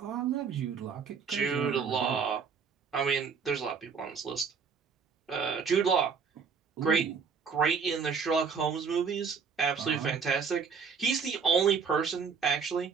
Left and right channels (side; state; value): left; quieter; 5.9 dB